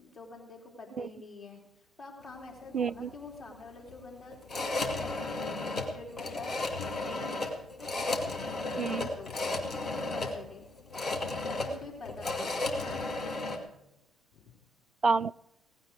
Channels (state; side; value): normal; both; correlation 0.75